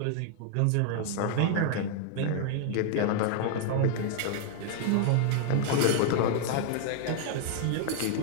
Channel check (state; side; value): different; both; correlation 0.00